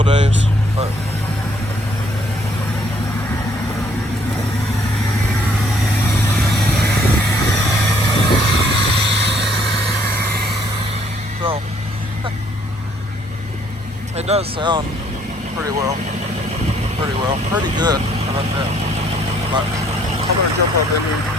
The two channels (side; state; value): both; normal; correlation 0.65